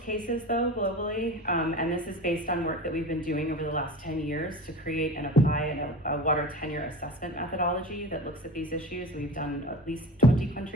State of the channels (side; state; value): both; normal; correlation 0.33